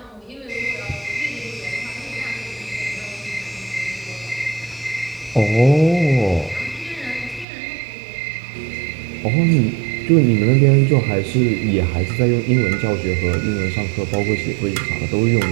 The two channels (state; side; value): drops out; left; at 7.5 s